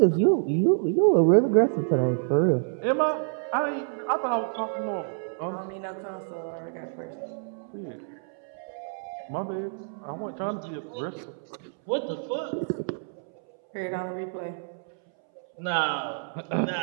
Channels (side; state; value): left; silent; 60 dB below the other